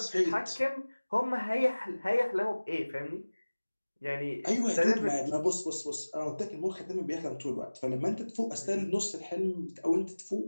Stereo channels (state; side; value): inverted; both; correlation -1.00